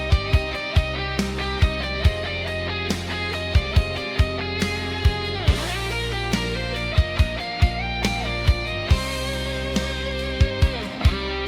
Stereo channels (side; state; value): both; identical; correlation 1.00